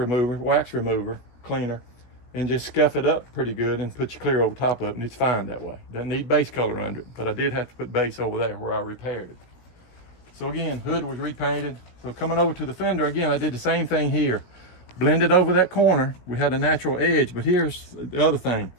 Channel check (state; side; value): late; right; 17 ms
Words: wax remover, cleaner, and just scuff it up pretty good and put your clear over top of it, and it's fine that way. Doesn't need base color under it, but I did have to put base over there where I repaired it. So again, hood was repainted. So coming over to the fender, again, I did the same thing here. Blended over that corner. We had a natural edge, but here's the other thing.